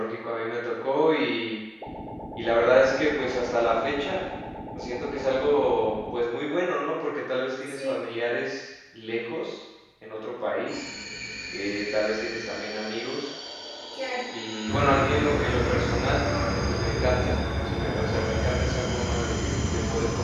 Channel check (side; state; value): both; identical; correlation 1.00